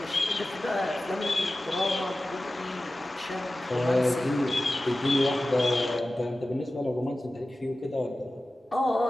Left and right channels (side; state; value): both; normal; correlation 0.95